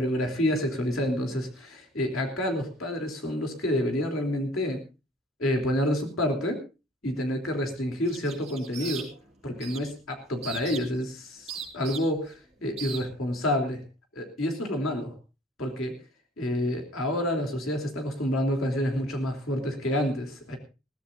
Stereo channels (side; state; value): both; normal; correlation 0.53